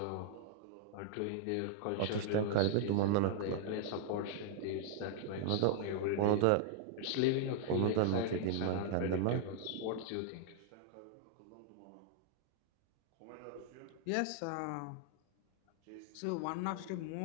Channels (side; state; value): both; different; correlation 0.00